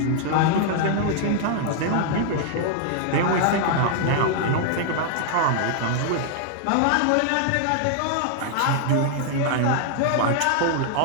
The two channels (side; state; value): both; different; correlation -0.01